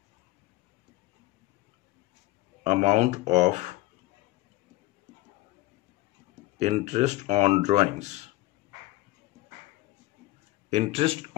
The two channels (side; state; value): right; quieter; 18.1 dB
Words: amount of interest on drawings। Interest